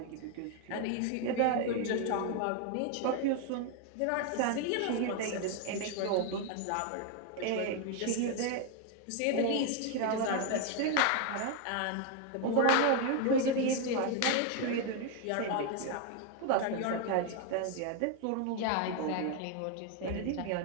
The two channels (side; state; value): both; different; correlation 0.01